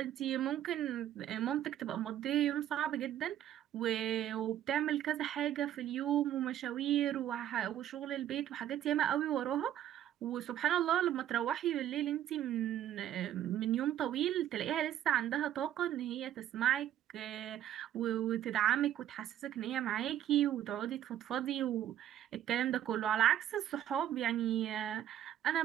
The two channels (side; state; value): left; quieter; 11.5 dB